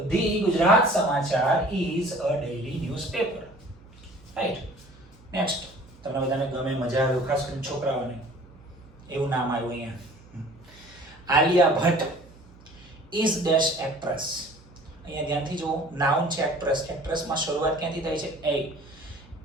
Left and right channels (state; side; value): noise; right; hum, 24 dB below the sound